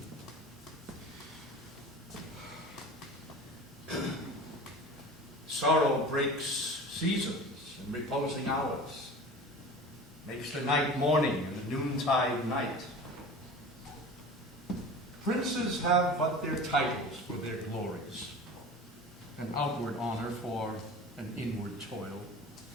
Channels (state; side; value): normal; both; correlation 0.36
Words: Sorrow breaks seasons and reposing hours, makes the night morning and the noontide night. Princes have but their titles for their glories, an outward honor for an inward toil.